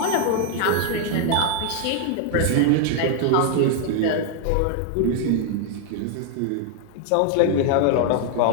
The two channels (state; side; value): different; both; correlation 0.00